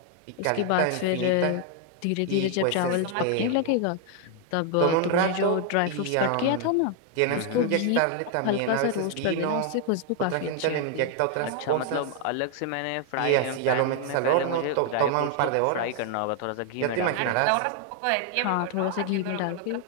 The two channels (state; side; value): different; both; correlation 0.00